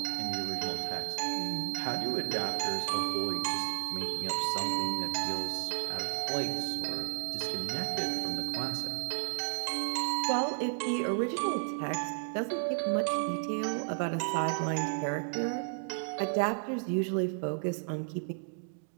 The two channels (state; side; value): silent; left; digital silence